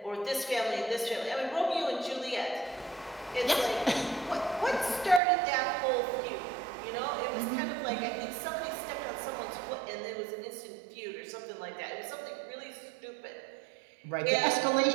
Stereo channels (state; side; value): drops out; left; at 5.2 s